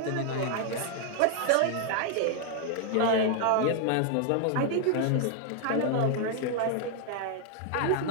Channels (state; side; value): different; both; correlation 0.00